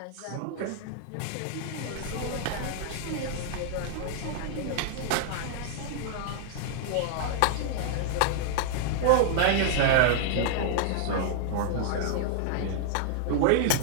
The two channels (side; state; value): both; different; correlation -0.01